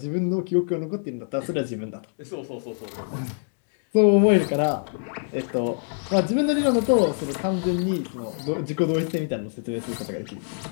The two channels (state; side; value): silent; right; digital silence